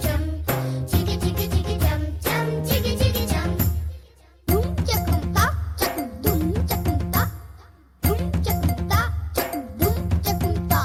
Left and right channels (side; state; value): both; identical; correlation 1.00